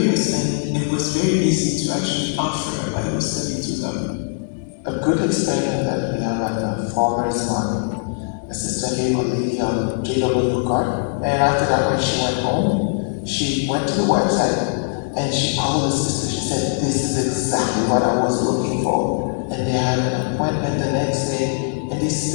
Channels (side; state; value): right; silent; digital silence